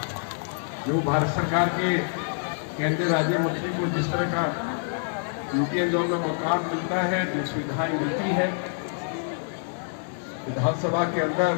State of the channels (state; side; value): silent; right; digital silence